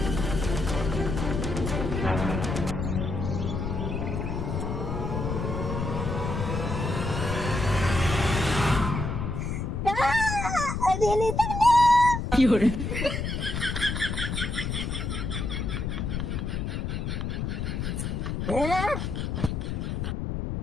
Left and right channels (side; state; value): left; noise; rumble, 2 dB below the sound